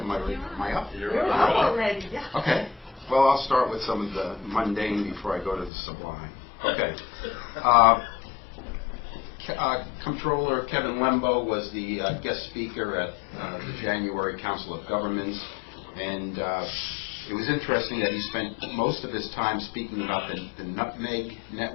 I up? You're up already, yeah. Okay. Well, I'll start with some of the mundane before I go to the sublime. Okay. Comptroller Kevin Lembo was the guest speaker at the January Council of Governments, and it was interesting that he spent most of his time speaking about the Nutmeg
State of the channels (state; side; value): drops out; right; at 5.7 s